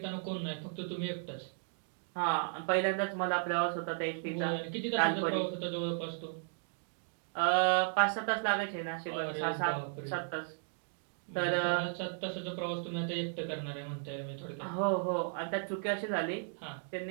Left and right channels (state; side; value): silent; left; digital silence